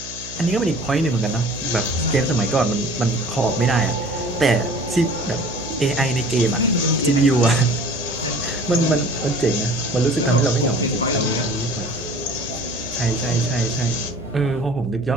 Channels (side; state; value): right; noise; hum, 16 dB below the sound